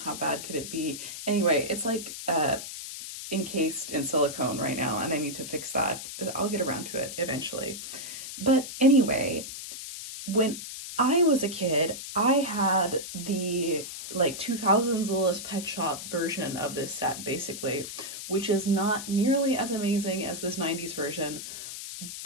how bad could it be? Anyway, it's like encased in silicone right now, and I need to fix that. I'll get around to it eventually. But anyway, when I was a kid, I had the like 2000s Littlest Pet Shop version of this set, basically, which is not nearly as amazing as this 90s version,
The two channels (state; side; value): noise; left; hiss, 9 dB below the sound